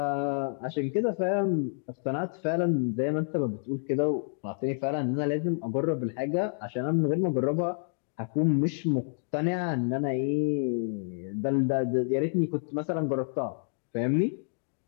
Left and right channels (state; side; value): silent; right; digital silence